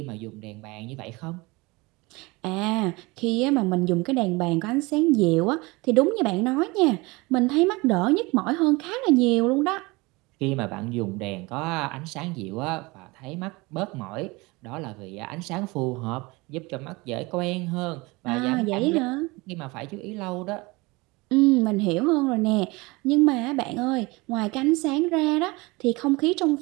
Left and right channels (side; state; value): left; quieter; 24.1 dB